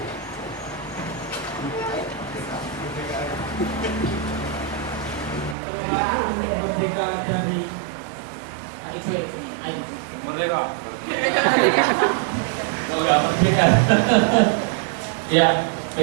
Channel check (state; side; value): drops out; left; at 5.6 s